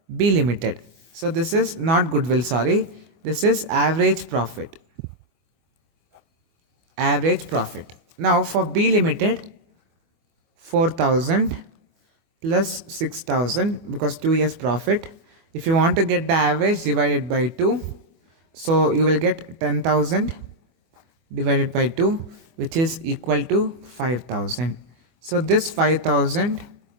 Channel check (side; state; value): left; late; 24 ms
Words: B Limited. So this is not goodwill, sorry, this is average profit. Average profit. Now for B Limited, 4,000 plus 6,000 because 2 years profit. If you want to get the average, divided by 2. So you will get 10,000 divided by 2, which is equal to 5,000. So this 5,000